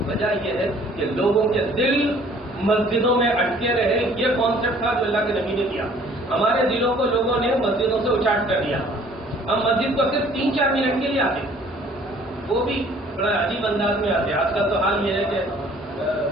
وجہ یہ ہے کہ لوگوں کے دل مسجدوں میں اٹکے رہے۔ یہ کانسیپٹ تھا جو اللہ کے نبی نے کیا۔ ہمارے دلوں کو لوگوں نے مسجدوں سے اچاٹ کر دیا۔ ہم مسجد کو صرف 3-4 منٹ کے لیے آتے، وہ بھی بڑا عجیب انداز میں آتے۔ آج کل تو حال یہ ہے کہ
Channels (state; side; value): normal; both; correlation 0.55